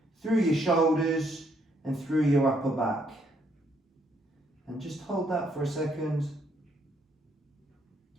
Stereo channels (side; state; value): both; normal; correlation 0.71